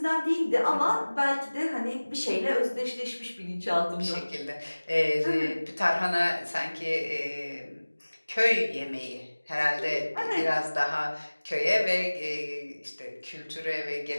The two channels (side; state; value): both; inverted; correlation -1.00